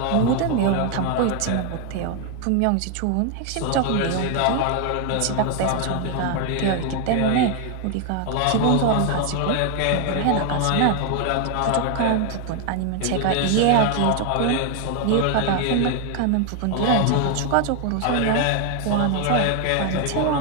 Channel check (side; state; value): both; different; correlation 0.01